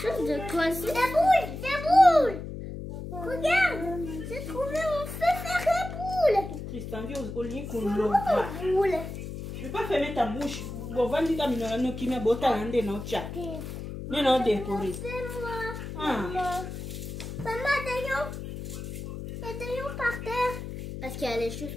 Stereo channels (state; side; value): noise; left; hum, 8 dB below the sound